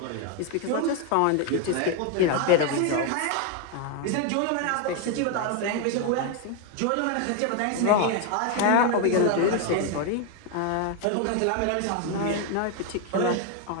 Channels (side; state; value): both; different; correlation 0.01